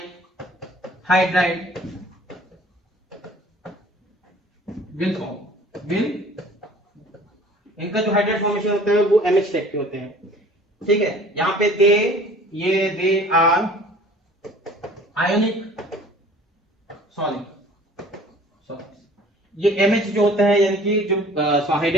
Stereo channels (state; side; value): normal; both; correlation 0.49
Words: हाइड्राइड विल इनका जो हाइड्राइड फॉर्मेशन होता है वो MH टाइप के होते हैं। ठीक है, यहाँ पे दे आर आयोनिक सॉलिड। ये MH जो होता है यानी कि जो